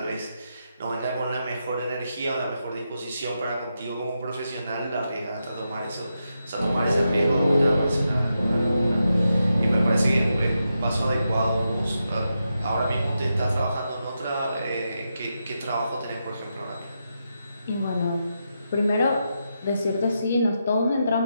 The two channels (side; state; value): both; inverted; correlation -0.86